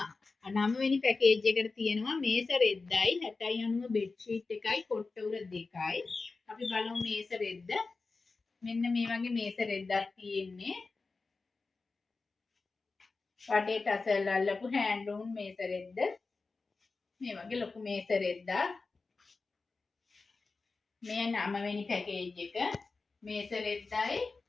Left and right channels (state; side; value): quieter; right; 4.0 dB